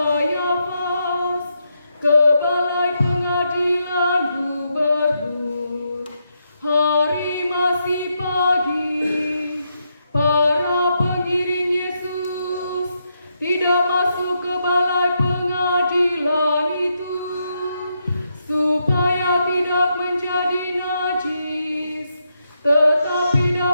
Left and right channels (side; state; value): both; inverted; correlation -0.81